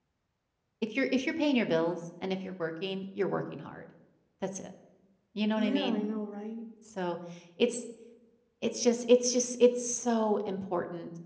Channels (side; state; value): both; identical; correlation 1.00